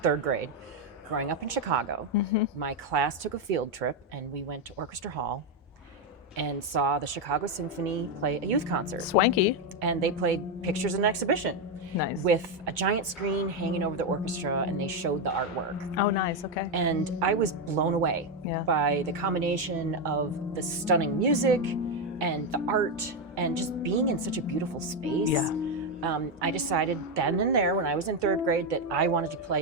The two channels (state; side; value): normal; both; correlation 0.06